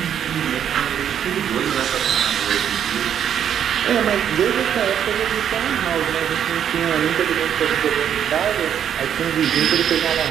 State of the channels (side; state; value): left; quieter; 9.1 dB